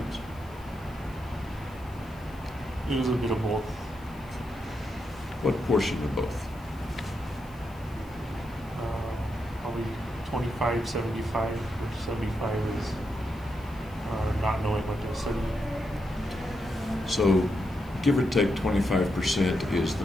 It was a bit of both. What portion of both? Probably 25, 75, which 75 is not knowing what to study. So, give or take 25% is the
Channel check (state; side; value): noise; left; hiss, 26 dB below the sound